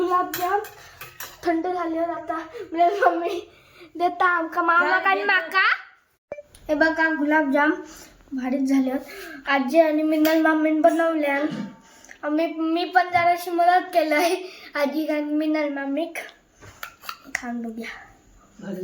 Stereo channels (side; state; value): both; identical; correlation 1.00